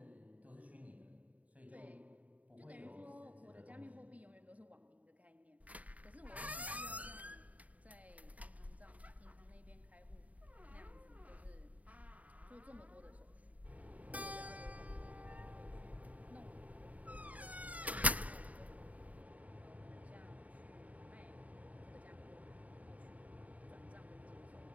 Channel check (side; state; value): left; late; 0.071 ms